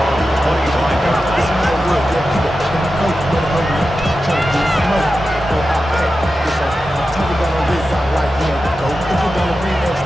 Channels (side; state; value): both; normal; correlation 0.92